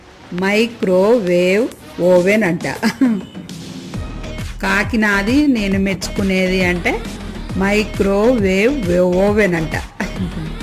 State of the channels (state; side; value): identical; both; correlation 1.00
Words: మైక్రోవేవ్ ఓవెన్ అంట. కాకి నాది నేను మెచ్చుకునేది అంటే మైక్రోవేవ్ ఓవెన్ అంట.